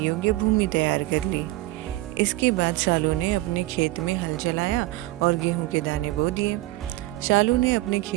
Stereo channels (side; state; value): left; quieter; 18.2 dB